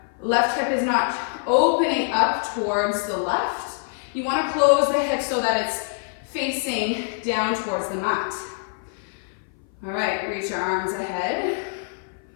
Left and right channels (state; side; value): silent; right; 59 dB below the other